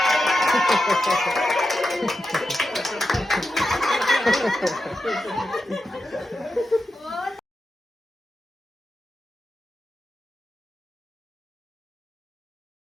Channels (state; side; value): normal; both; correlation 0.89